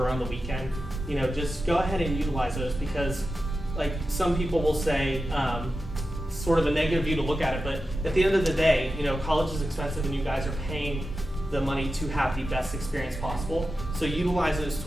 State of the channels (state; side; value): normal; both; correlation 0.92